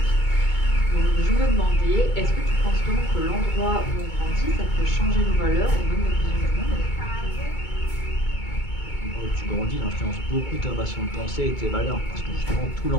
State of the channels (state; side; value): late; right; 2.2 ms